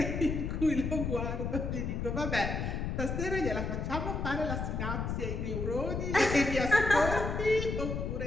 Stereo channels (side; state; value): left; noise; rumble, 2 dB below the sound